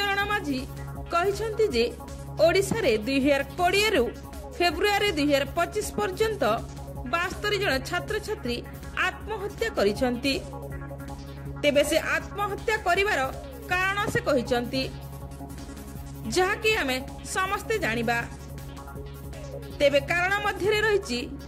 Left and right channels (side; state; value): both; identical; correlation 1.00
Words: माझी कहिसंती जे ओडिशा रे 2020 रु फेब्रुआरी 2025 पर्यंत 72 जन छात्र छात्री आत्महत्या करिसंती। तेबे से आत्महत्या करिवार कारण से कहिसंती, जहाकी हमें समस्ते जानिबा। तेबे कारण मध्य रही